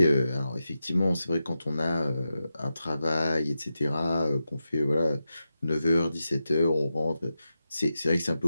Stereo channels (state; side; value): inverted; both; correlation -0.89